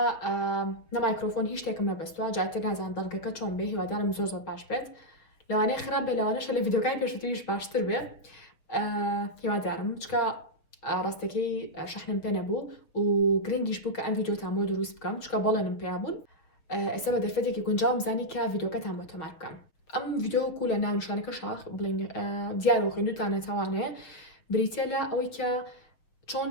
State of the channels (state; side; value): late; right; 6.5 ms